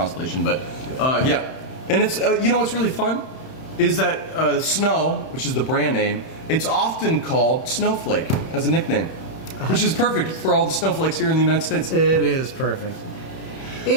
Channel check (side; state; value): right; late; 31 ms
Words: But yeah, and it's you know what's really fun is that Snow, which is the brand name, it's often called Snowflake as a nickname, which is perfect for all the snowflakes here in the United States. It is perfect.